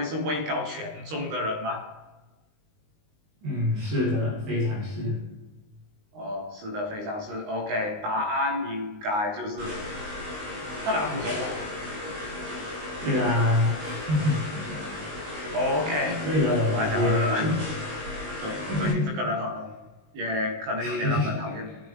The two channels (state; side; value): late; left; 19 ms